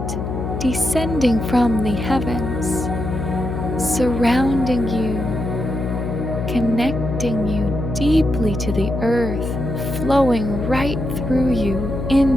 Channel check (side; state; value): left; noise; hum, 4 dB below the sound